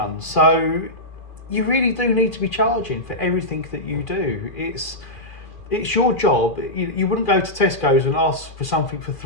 So you really do need to be charging for everything that you do. It's your job. You wouldn't go to Tesco's and ask for something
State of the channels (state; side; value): late; right; 2.4 ms